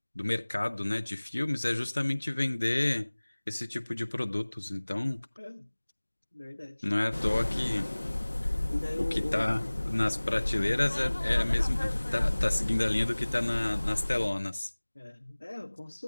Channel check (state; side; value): inverted; both; correlation -1.00